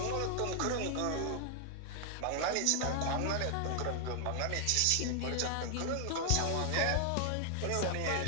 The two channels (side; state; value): both; different; correlation 0.00